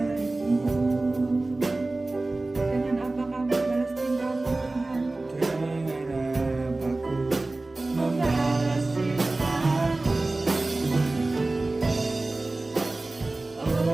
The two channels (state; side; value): quieter; left; 3.1 dB